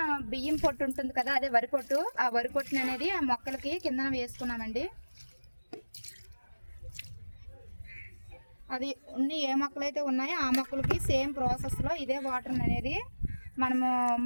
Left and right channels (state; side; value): inverted; both; correlation -1.00